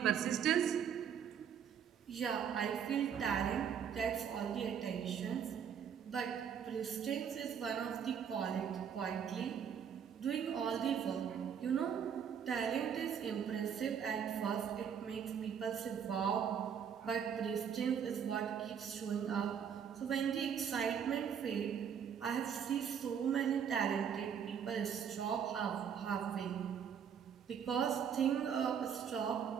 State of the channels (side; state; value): left; quieter; 7.9 dB